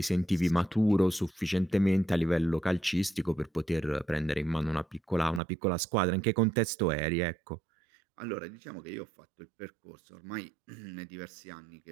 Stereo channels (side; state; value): left; drops out; at 5.4 s